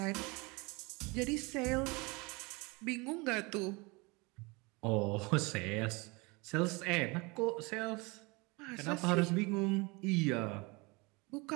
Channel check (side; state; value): left; quieter; 26.7 dB